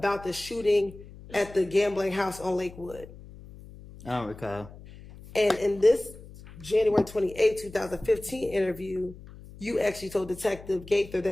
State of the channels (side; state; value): left; noise; hum, 18 dB below the sound